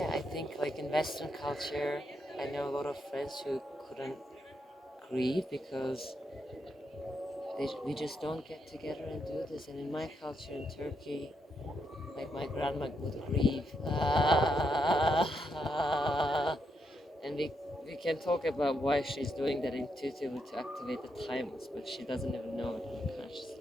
I think like in Western culture, I know a lot of friends who couldn't grieve because we just don't get together and do this. And in my culture in Turkey, like my grandma would grieve, and we can talk about why she's doing that intuitively to activate the thymus, but she doesn't even know it on a conscious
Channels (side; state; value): both; normal; correlation 0.80